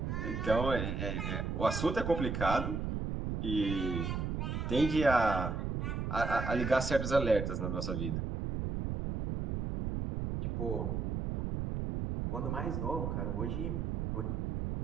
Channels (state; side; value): noise; right; rumble, 2 dB below the sound